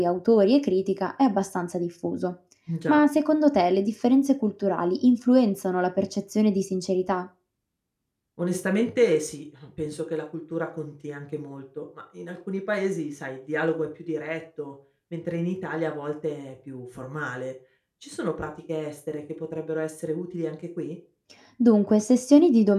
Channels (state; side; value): identical; both; correlation 1.00